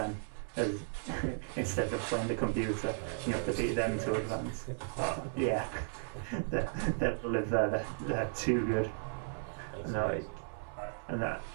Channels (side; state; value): left; silent; 54 dB below the other